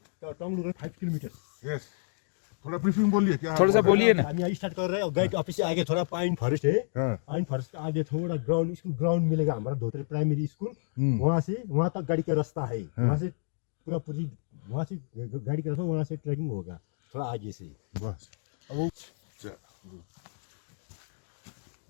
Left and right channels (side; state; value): right; silent; digital silence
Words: टोंगलू 5 किलोमीटर। यस, थोड़ा ब्रीफिंग बोलिए क्या। थोड़ा सा बोलिए ना। हम यहाँ स्टार्ट कर रहे हैं, गाइड ऑफिस से आगे थोड़ा पाइन फॉरेस्ट है। हाँ। पाइन फॉरेस्ट के आगे थोड़ा ग्राउंड, स्कूल ग्राउंड मिलेगा हमारा, धोतरे प्राइमरी स्कूल। वहाँ से वहाँ तक गाड़ी का रास्ता है। वहाँ से पूरी वहाँ से गाड़ी का रास्ता, वहाँ से ट्रैकिंग होगा थोड़ा आगे से। बस